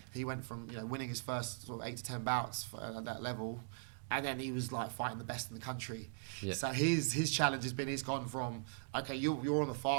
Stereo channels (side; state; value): left; silent; digital silence